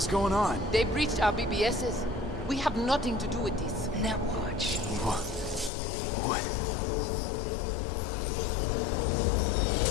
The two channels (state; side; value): drops out; right; at 5.7 s